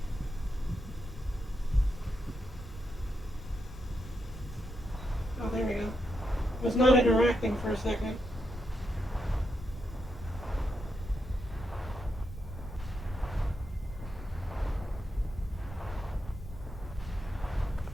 Oh, there we go. Was not interacting for a second.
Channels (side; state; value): both; normal; correlation 0.83